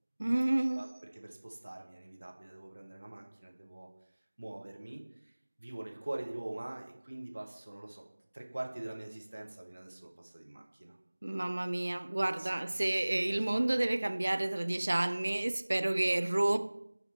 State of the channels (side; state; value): both; inverted; correlation -1.00